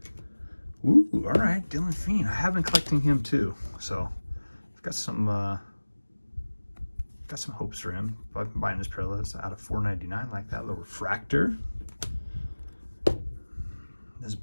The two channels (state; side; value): inverted; both; correlation -1.00